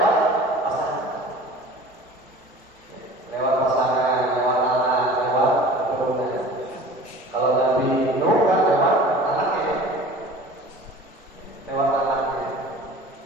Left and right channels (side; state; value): both; normal; correlation 0.42